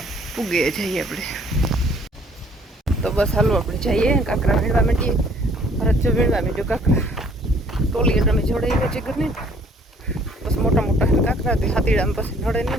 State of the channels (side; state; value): both; normal; correlation 0.59